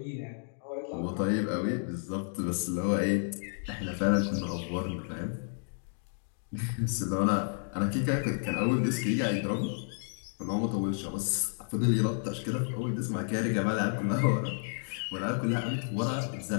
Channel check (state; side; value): silent; right; digital silence